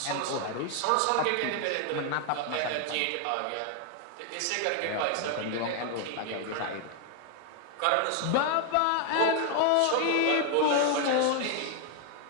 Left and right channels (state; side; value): different; both; correlation 0.00